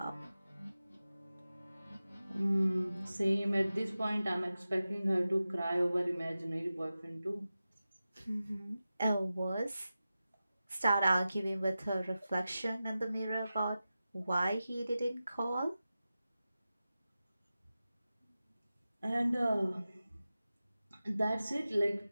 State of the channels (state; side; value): inverted; both; correlation -0.94